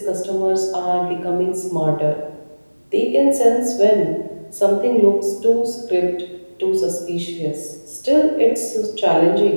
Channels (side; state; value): both; inverted; correlation -1.00